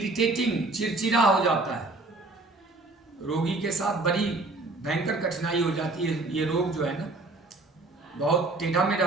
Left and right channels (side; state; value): left; quieter; 3.1 dB